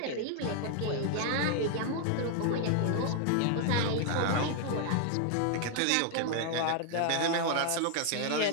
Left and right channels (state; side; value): different; both; correlation 0.00